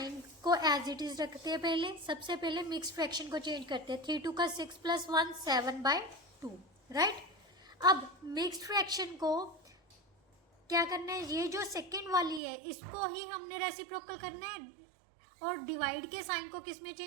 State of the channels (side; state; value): left; drops out; at 12.4 s